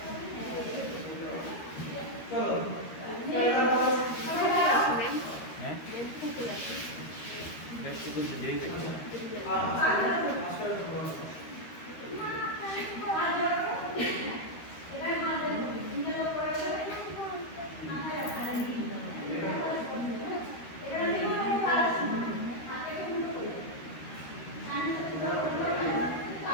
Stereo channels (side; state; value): right; late; 13 ms